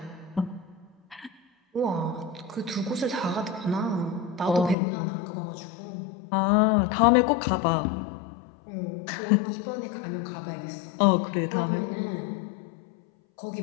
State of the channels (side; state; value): right; drops out; at 4.8 s